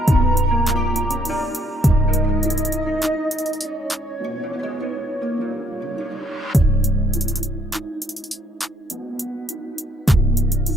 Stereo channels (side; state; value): both; normal; correlation 0.71